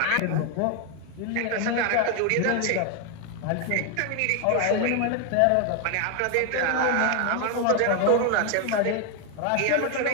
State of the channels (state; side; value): different; both; correlation 0.01